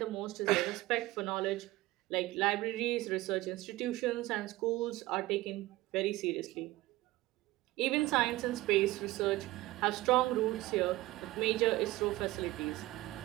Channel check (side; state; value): left; quieter; 18.4 dB